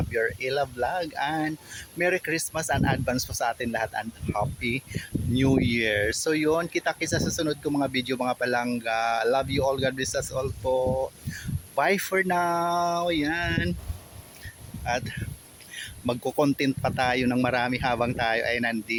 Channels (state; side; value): identical; both; correlation 1.00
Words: Ella Vlog, and Merry Christmas and advance po sa atin lahat and Happy New Year. So yun, kita-kits sa susunod ko mga video mga palangga. Love you all, God bless us all po. Bye for now. Yan. At magko-content pa tayo ng marami habang tayo ay